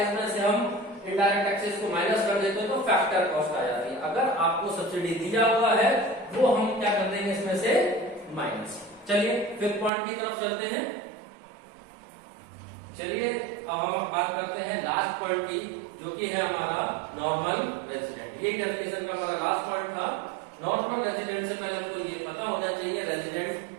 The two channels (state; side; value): drops out; left; at 9.9 s